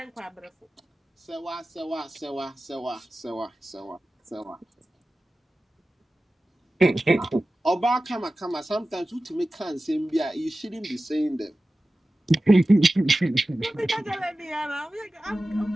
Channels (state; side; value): normal; both; correlation 0.95